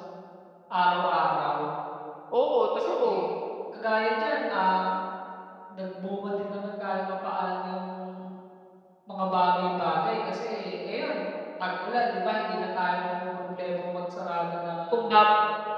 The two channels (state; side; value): identical; both; correlation 1.00